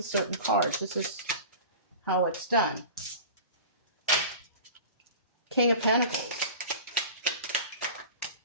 a certain cards. This is how it's done. King of Pentacles.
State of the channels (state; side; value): inverted; both; correlation -0.37